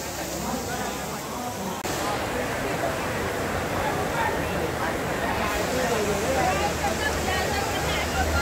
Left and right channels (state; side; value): identical; both; correlation 1.00